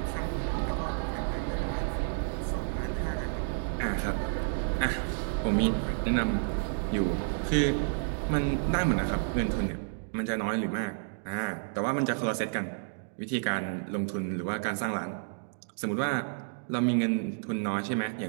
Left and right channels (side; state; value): left; silent; digital silence